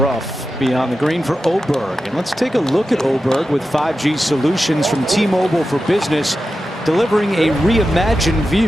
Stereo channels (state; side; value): normal; both; correlation 0.92